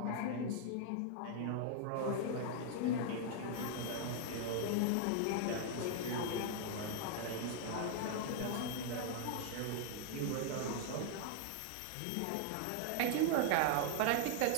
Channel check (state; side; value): different; both; correlation -0.01